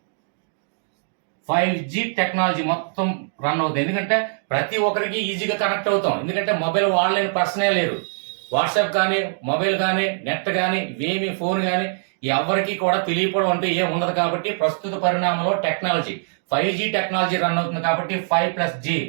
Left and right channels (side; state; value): left; silent; digital silence